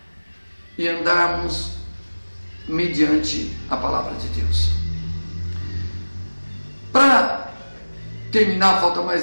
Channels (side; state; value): both; inverted; correlation -1.00